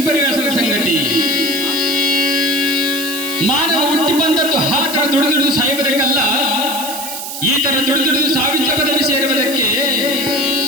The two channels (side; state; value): right; noise; hiss, 7 dB below the sound